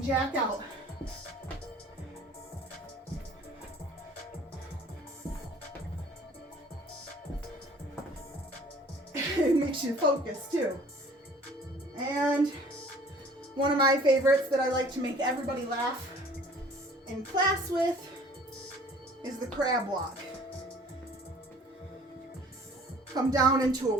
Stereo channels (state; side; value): normal; both; correlation 0.51